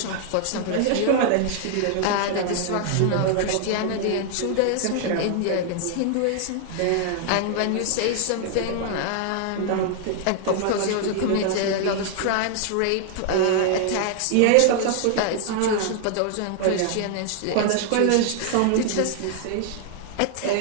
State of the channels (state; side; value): different; both; correlation 0.00